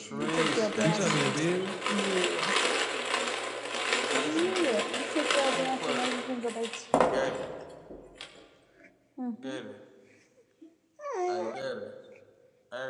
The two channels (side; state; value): both; identical; correlation 1.00